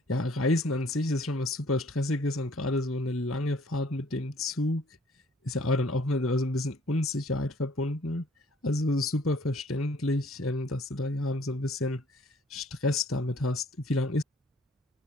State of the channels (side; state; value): both; normal; correlation 0.57